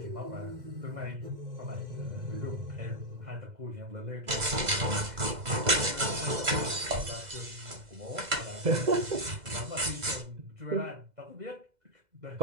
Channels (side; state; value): left; late; 2.0 ms